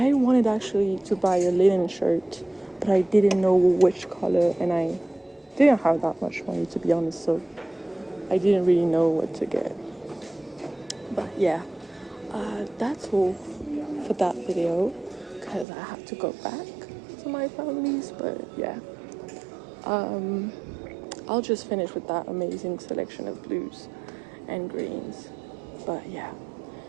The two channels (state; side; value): drops out; left; at 15.7 s